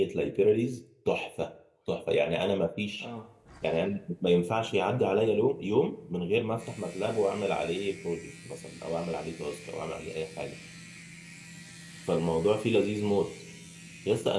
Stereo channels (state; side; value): identical; both; correlation 1.00